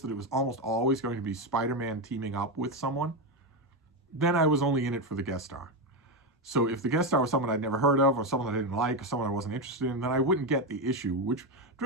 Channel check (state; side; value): normal; both; correlation 0.10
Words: that it was almost always going to be Spider-Man teaming up with someone, then I was only in it for the guest star. So if the guest star was someone I'd never heard of, or someone I didn't like, or someone I wasn't interested in, then I wouldn't get the issue, which